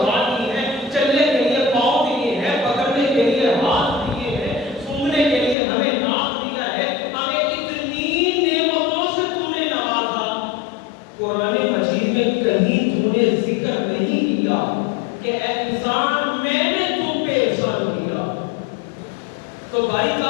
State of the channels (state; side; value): drops out; right; at 5.6 s